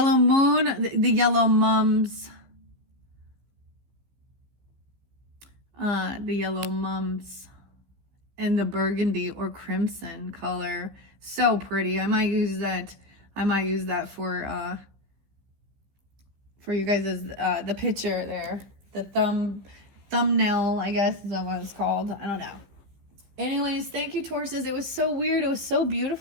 moon, the yellow mums. The yellow mums and the burgundy or crimson color. So pretty. I might use that for you guys as the picture there. The thumbnail, I guess is what it's called. I don't know. Anyways, thank you, Tauruses. It was so weird. It was so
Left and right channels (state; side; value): late; left; 15 ms